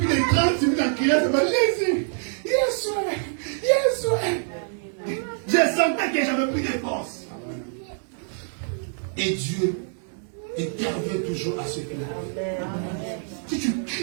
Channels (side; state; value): left; silent; digital silence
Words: de 30 minutes en criant, c'est pas Jésus. Yes, je sentais que j'avais plus de force. Et Dieu intervient toujours à ce plan. Si tu